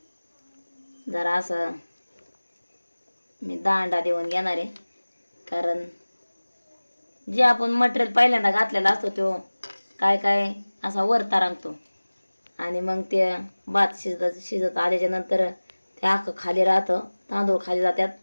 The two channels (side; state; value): both; inverted; correlation -1.00